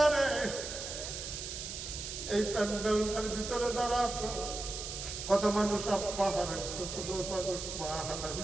এই প্যান্ডেলটার ভিতরে যারা আছে কত মানুষ আব্বা হারাইছে, কত মানুষ মা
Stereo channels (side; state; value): right; noise; hiss, 6 dB below the sound